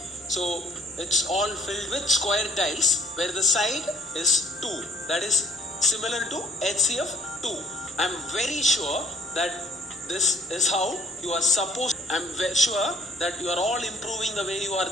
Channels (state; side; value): normal; both; correlation 0.61